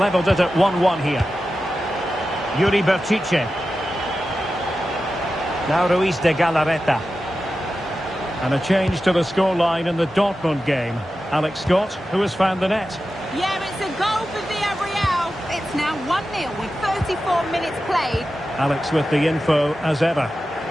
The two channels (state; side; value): normal; both; correlation 0.92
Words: it at 1-1 here. Yuri Berchiche. Now Ruiz de Galarreta. And a change to the scoreline in the Dortmund game. Alex Scott, who has found the net. Yeah, it's a goal for Villarreal. It's now 1-0 with 34 minutes played. Alex with the info as ever.